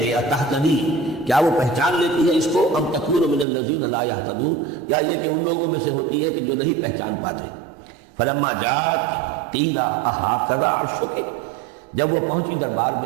گے، تہتدی، کیا وہ پہچان لیتی ہے اس کو، ام تکون من الذین لا یہتدون، یا یہ کہ ان لوگوں میں سے ہوتی ہے کہ جو نہیں پہچان پاتے۔ فلما جاءت قیل اھٰکذا عرشک، جب وہ پہنچی دربار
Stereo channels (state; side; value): drops out; left; at 3.5 s